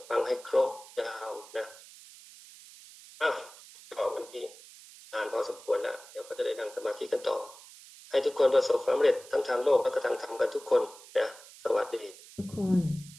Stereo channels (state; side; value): noise; right; hiss, 19 dB below the sound